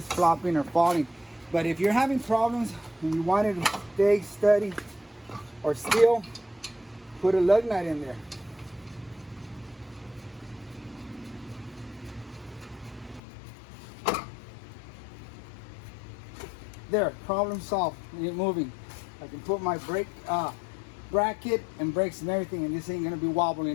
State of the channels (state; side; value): drops out; right; at 13.2 s